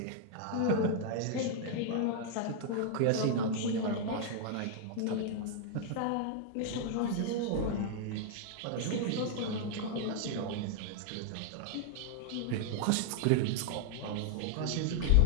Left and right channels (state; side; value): different; both; correlation 0.00